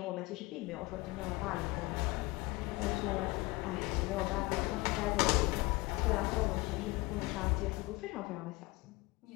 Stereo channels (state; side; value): quieter; right; 22.8 dB